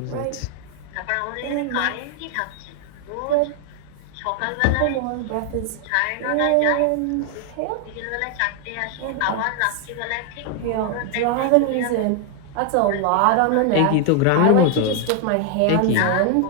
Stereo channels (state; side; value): different; both; correlation 0.00